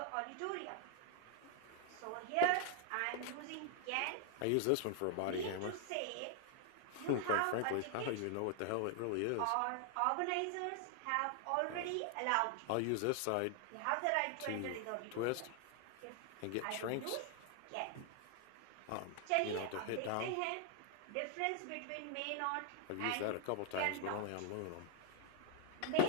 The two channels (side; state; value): both; different; correlation 0.00